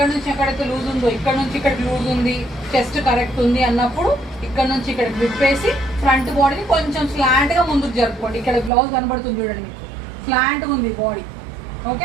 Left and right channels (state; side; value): drops out; left; at 8.7 s